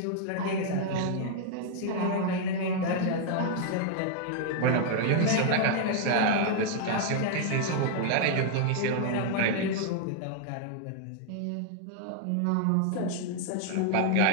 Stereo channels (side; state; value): both; different; correlation 0.00